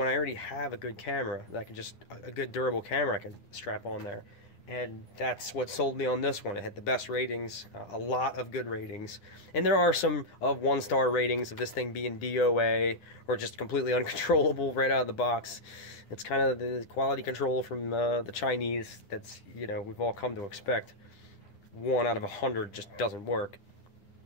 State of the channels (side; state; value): right; late; 10 ms